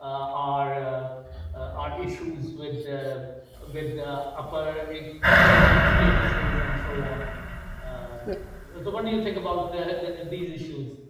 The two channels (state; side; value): identical; both; correlation 1.00